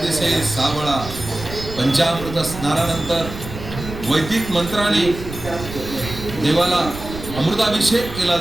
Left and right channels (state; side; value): noise; right; rumble, 10 dB below the sound